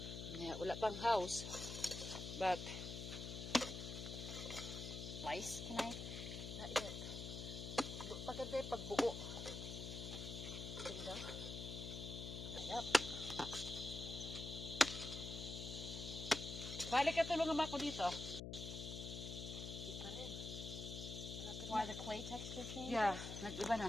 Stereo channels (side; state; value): left; noise; hum, 6 dB below the sound